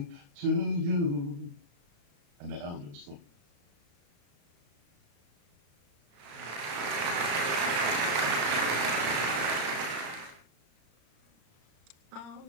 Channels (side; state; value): left; late; 35 ms